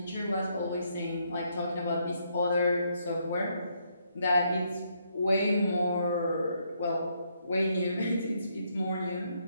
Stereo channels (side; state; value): both; inverted; correlation -0.74